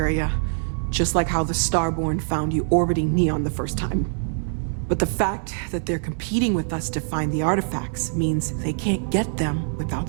just like how the Starborn found you orbiting Neon the first time. But the fact that they're competing with us to find the artifacts means they can't get them without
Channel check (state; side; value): silent; left; 61 dB below the other